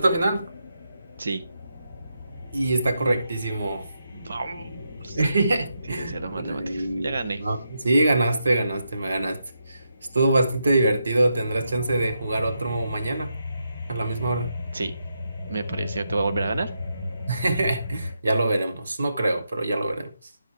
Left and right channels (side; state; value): both; inverted; correlation -0.84